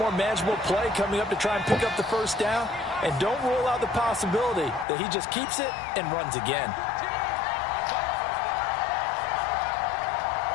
manageable play coming up to try and pick up the first down. And don't rule out the possibility that he just keeps it and runs again.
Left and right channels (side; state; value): right; drops out; at 4.9 s